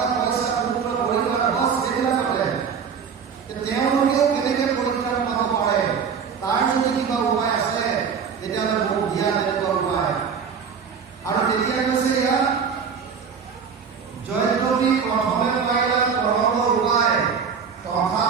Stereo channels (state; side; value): quieter; left; 6.4 dB